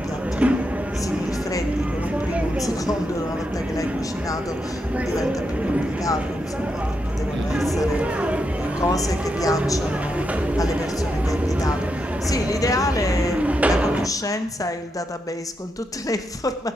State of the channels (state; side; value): normal; both; correlation 0.83